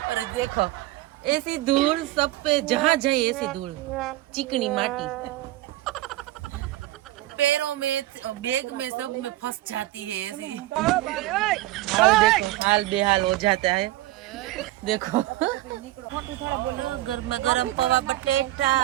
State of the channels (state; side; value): quieter; left; 16.7 dB